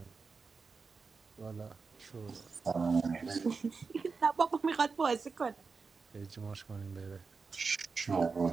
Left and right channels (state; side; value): quieter; left; 4.8 dB